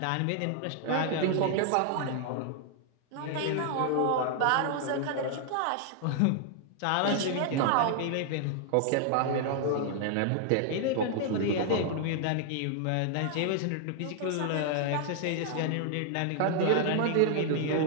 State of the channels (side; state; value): both; different; correlation 0.00